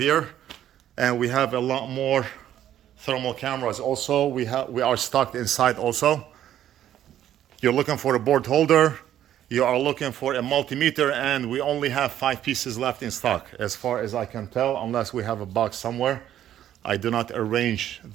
And we have a lot more thermal cameras also. We are stocked inside also. You're looking for a board holder, you are looking for a multimeter, and we only have 5 pieces left in stock, as far as I can tell, unless we have a box somewhere. I do not arrange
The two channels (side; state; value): left; quieter; 11.4 dB